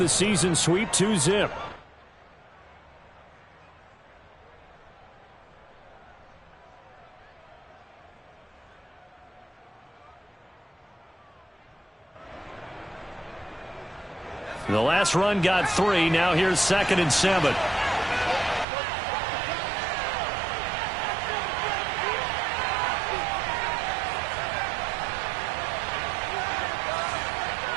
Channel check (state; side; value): drops out; left; at 18.7 s